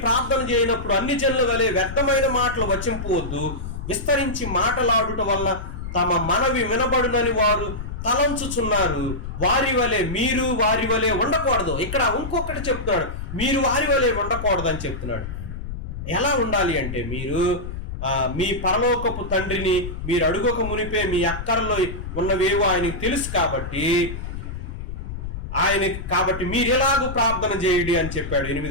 ప్రార్థన చేయనప్పుడు అన్ని జనుల వలె వ్యర్థమైన మాటలు వచింపవద్దు, విస్తరించి మాటలాడుట వల్ల తమ మనవి వినబడునని వారు తలంచుచున్నారు, మీరు వారి వలె ఉండకూడదు. ఇక్కడ ఇంకొకటి చెప్తున్నాడు, మీరు వారి వలె ఉండకూడదు అని చెప్తున్నాడు. ఎలా ఉండాలి అంటే, మీరు మీ పరలోకపు తండ్రిని మీరు అడుగక మునిపే మీ అక్కరలో ఉన్నవేవో ఆయనకు తెలుసు కాబట్టి మీరు ఎలాగూ ప్రార్థన చేయండి అని చెప్పాడు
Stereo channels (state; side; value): noise; left; rumble, 7 dB below the sound